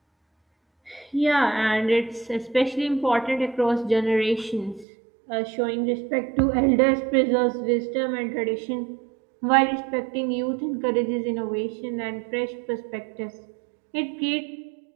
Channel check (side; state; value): left; drops out; at 4.9 s